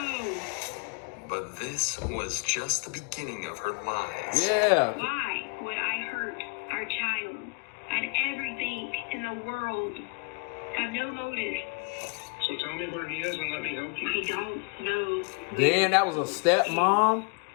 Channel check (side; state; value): right; quieter; 33.0 dB